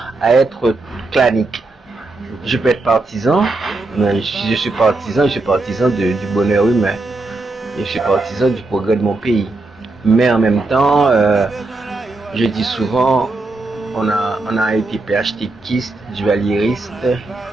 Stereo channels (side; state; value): left; quieter; 3.2 dB